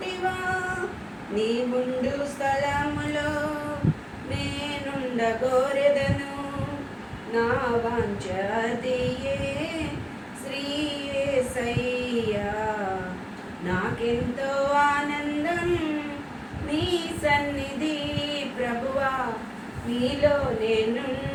నీవుండు స్థలములో నేనుండగోరెదను, నా వాంఛ అదియే శ్రీ యేసయ్యా. నాకెంతో ఆనందం నీ సన్నిధి ప్రభువా, నీలో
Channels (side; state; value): both; identical; correlation 1.00